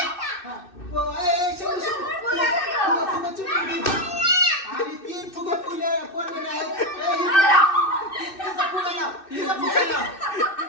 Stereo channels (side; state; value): right; late; 2.6 ms